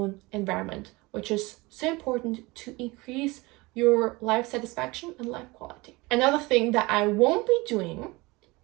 environment, which is so important to increase your life satisfaction and life quality. Another thing that I won't be doing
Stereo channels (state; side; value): quieter; left; 23.2 dB